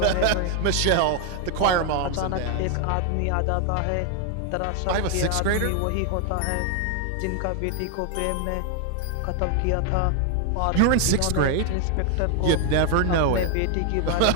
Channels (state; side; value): different; both; correlation 0.00